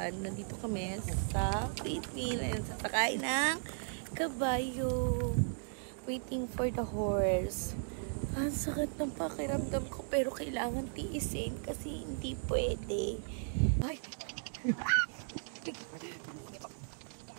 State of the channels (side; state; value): left; silent; digital silence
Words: kami sa Philippines. Sasakay ng kabayo. Waiting for the horse. Ang sakit ng pakiramdam ko pero kailangan tiisin kasi hindi pwede. Ay!